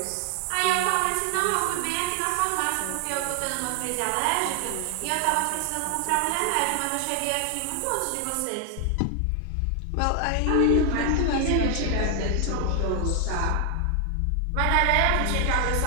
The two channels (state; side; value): different; both; correlation 0.00